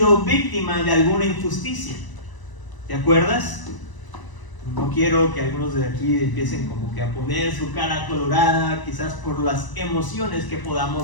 víctima de alguna injusticia? ¿Te acuerdas? No quiero que algunos de aquí empiecen como que a poner su cara colorada, quizás por las emociones que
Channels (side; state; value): right; late; 1.0 ms